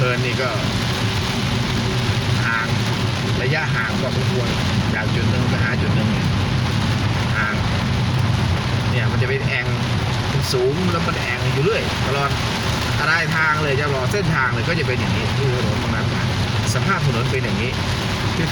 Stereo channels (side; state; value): both; identical; correlation 1.00